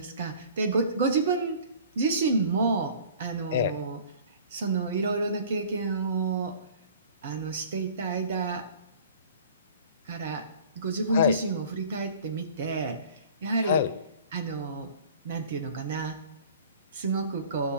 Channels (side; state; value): both; inverted; correlation -0.47